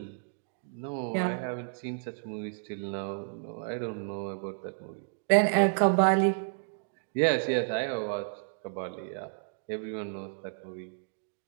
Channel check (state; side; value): silent; left; digital silence